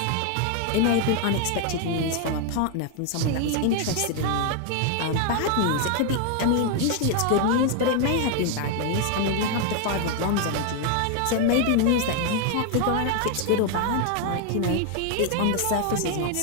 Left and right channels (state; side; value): different; both; correlation 0.00